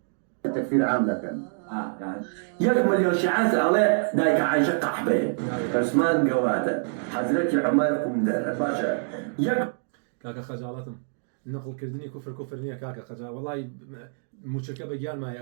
تەکفیر عام دەکەن يك مليون شيعان على دايك عايشة قحبة عثمان قوادة حضرتك عمر قمدر باشا يك كاكا خجالتم نقل كردني كفر نية كاكا خجال والله موشكة بجان ما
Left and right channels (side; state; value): left; silent; digital silence